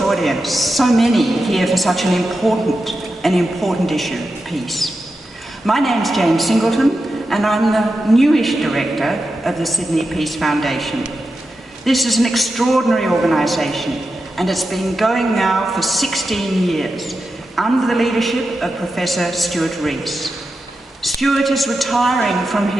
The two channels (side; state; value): both; normal; correlation 0.90